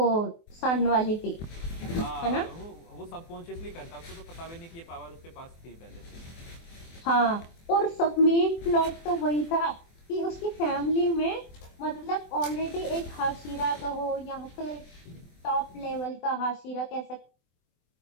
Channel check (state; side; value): late; right; 24 ms